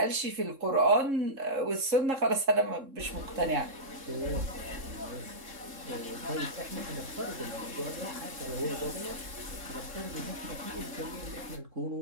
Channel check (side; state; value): left; late; 3.7 ms